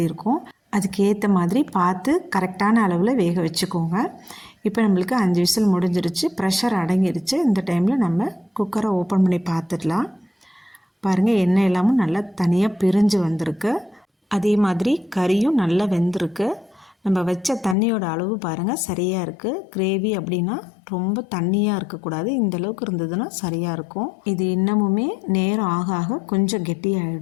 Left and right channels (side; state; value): right; drops out; at 17.8 s